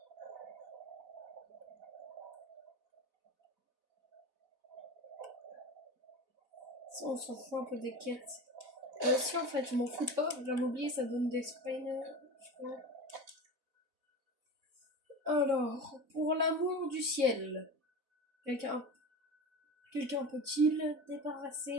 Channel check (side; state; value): left; late; 4.0 ms